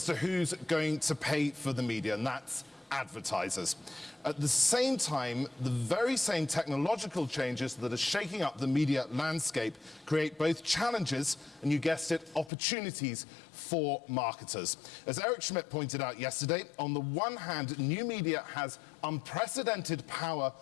to who's going to pay for the media, and that's advertisers. At the same time, the very same technological changes that are shaking up the media landscape create both challenges and, you guessed it, opportunities for marketers. As Eric Schmidt pointed out yesterday, on the one hand, new media has unprecedented power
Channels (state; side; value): drops out; right; at 12.5 s